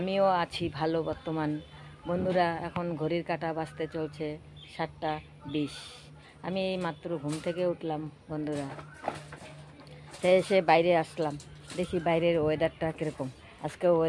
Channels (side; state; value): both; identical; correlation 1.00